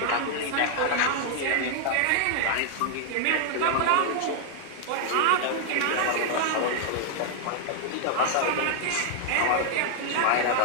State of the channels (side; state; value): both; different; correlation 0.00